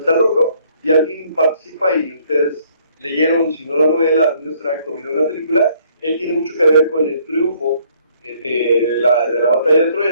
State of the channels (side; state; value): both; inverted; correlation -0.64